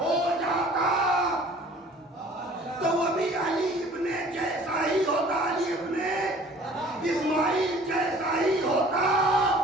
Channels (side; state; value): both; normal; correlation 0.50